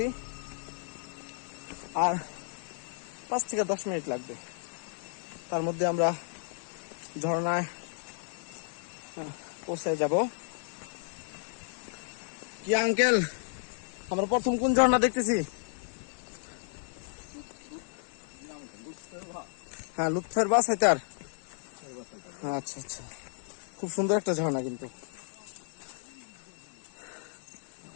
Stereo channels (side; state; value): right; silent; 56 dB below the other